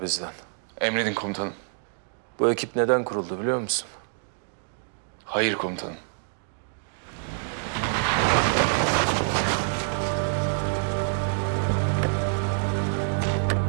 bizden. Emredin komutanım. Bu ekip neden kuruldu biliyor musun? Hayır komutanım.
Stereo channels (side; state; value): left; silent; digital silence